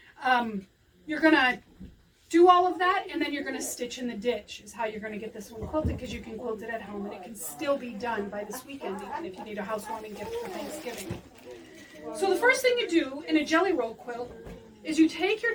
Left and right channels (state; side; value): identical; both; correlation 1.00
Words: You're going to do all of that, and then you're going to stitch in the ditch is how you're going to get this one quilted, because you can quilt it at home, and it can still be done by this weekend, even if you need a housewarming gift for Thanksgiving. So the first thing you do in a jelly roll quilt is you take your